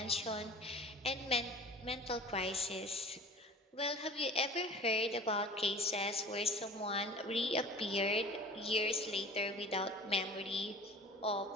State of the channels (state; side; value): normal; both; correlation 0.42